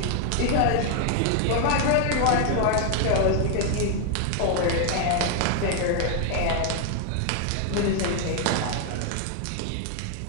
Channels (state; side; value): different; both; correlation 0.00